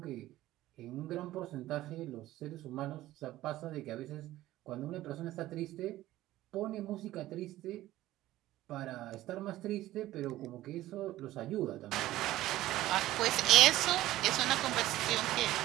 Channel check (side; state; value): left; quieter; 15.5 dB